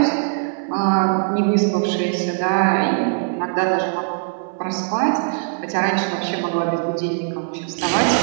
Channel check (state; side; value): silent; left; 65 dB below the other